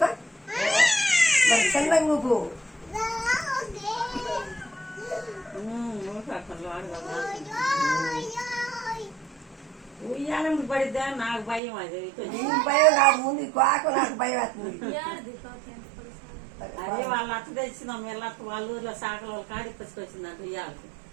మరి చంద్రంగా నువ్వు ఉయ్యాలని పడిద్దా నాకు భయం అది నీకు భయం కాదు ముందు కాకు నాకు భయం వేస్తుంది అదే వాళ్ళ అత్త తెచ్చిందాం వీళ్ళ అత్త వాళ్ళ ఊర్లో సాకల వాళ్ళు కాడి పసుకొచ్చిందంట ఉయ్యాలకు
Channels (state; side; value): drops out; left; at 11.6 s